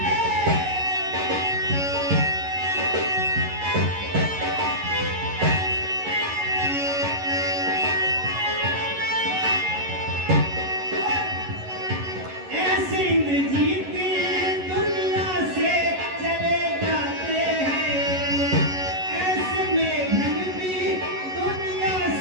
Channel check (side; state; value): left; late; 11 ms